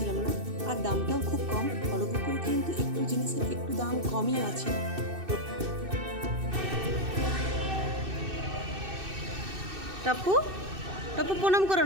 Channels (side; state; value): left; late; 2.6 ms